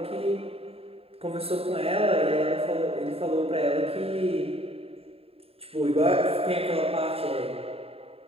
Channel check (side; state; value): left; late; 0.28 ms